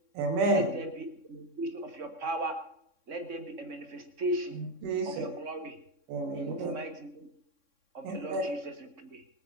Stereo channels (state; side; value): late; left; 3.6 ms